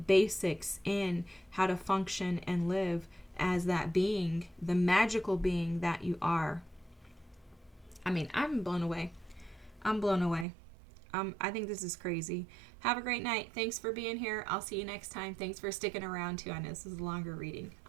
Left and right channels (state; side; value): drops out; left; at 10.5 s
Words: in how to function and live as that being, the magical being that you are. I mean, I'm blown away. I'm blown away. I think this is crazy. Have a great night. Thanks for being here. I'll see you next time. Thanks for sticking around too. I know this is a longer reading.